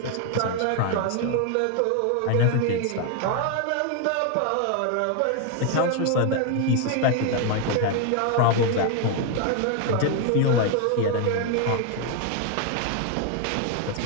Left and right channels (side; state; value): both; different; correlation 0.01